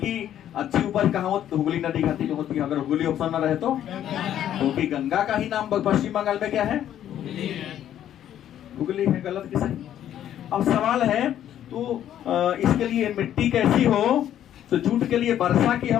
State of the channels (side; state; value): right; quieter; 11.0 dB